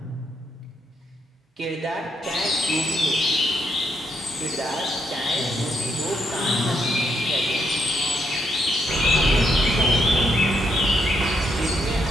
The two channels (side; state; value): both; normal; correlation 0.77